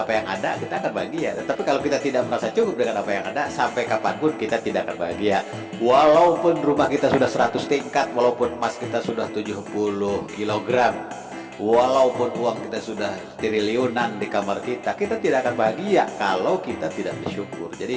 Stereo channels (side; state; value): both; identical; correlation 1.00